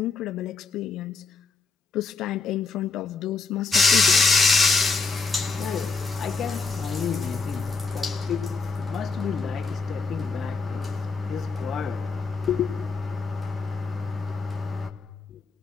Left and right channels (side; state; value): right; quieter; 4.3 dB